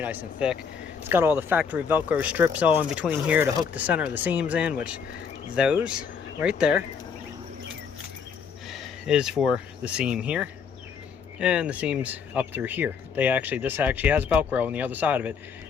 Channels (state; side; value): quieter; right; 6.4 dB